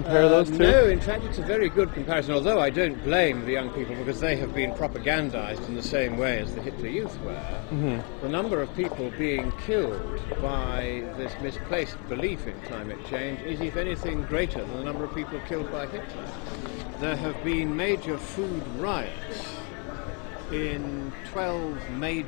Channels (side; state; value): right; quieter; 35.3 dB